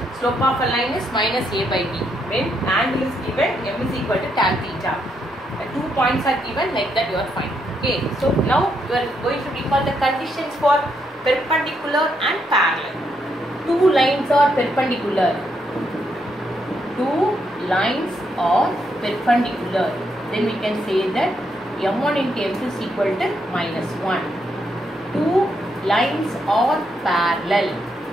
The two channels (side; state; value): both; normal; correlation 0.78